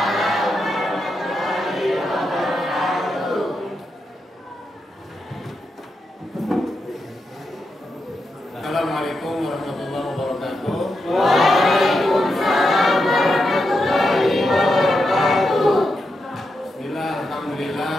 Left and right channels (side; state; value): both; normal; correlation 0.85